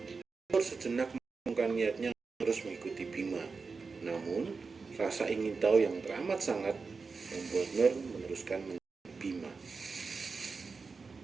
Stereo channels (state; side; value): quieter; left; 4.6 dB